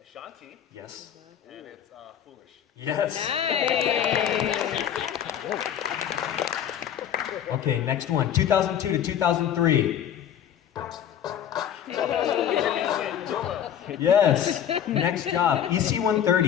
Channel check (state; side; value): quieter; right; 9.7 dB